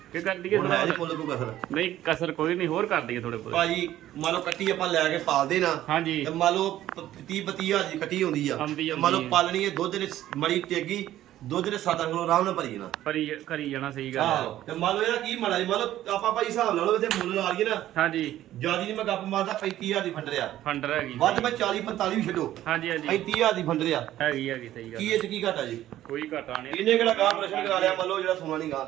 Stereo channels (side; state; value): left; quieter; 13.3 dB